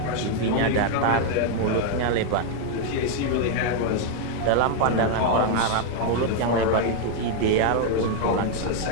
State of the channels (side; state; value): both; different; correlation 0.00